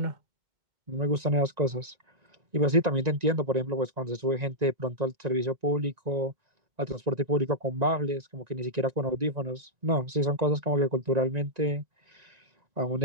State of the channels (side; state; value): left; late; 1.9 ms